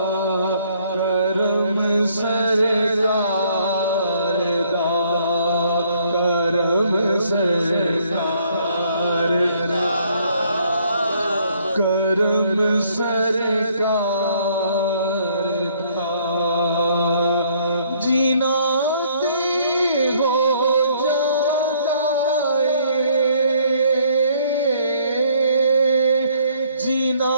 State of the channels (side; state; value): both; inverted; correlation -0.64